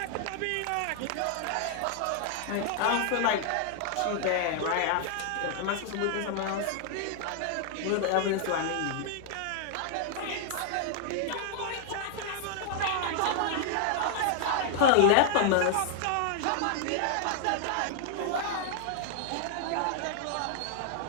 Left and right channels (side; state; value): both; different; correlation 0.00